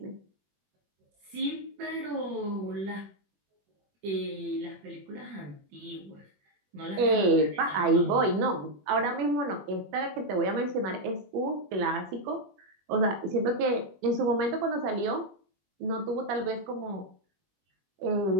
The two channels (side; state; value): left; late; 21 ms